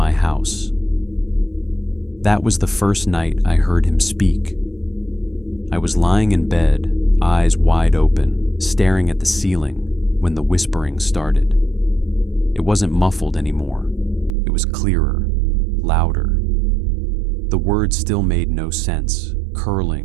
house. That was the first night I heard him speak. I was lying in bed, eyes wide open, staring at the ceiling when the whispering started. It wasn't muffled anymore. It was clearer, louder. The words still made no sense,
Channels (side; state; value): left; drops out; at 14.3 s